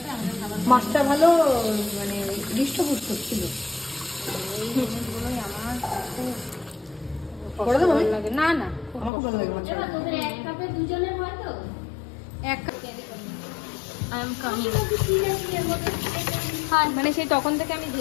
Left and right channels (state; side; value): drops out; right; at 9.1 s